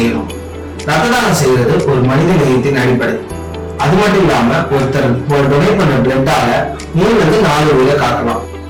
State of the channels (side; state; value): both; identical; correlation 1.00